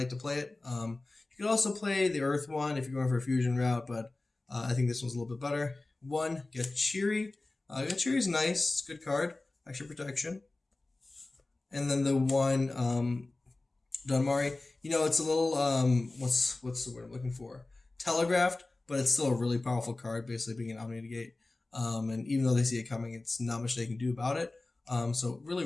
to play it. You could also play the Earth one if you're going for a fusion route, but I think this one's a little bit better. 1, Gachiri. Gachiri's nice. It's a good card. Extra protection. And then the 1, Dunmari. It's a little, what's the word I'm looking for? Telegraphed, but it's still a really powerful card, basically being an Omni-Negate. And even though they see it coming, it's not much they can do about it. So really,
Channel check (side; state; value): right; quieter; 3.1 dB